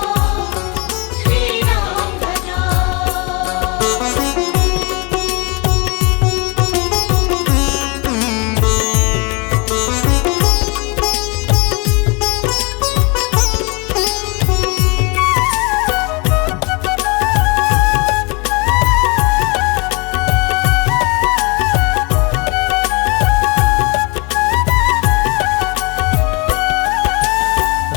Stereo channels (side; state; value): right; quieter; 29.3 dB